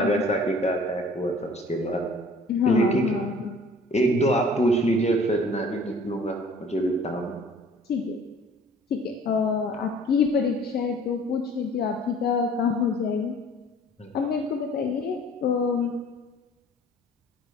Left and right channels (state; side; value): normal; both; correlation 0.51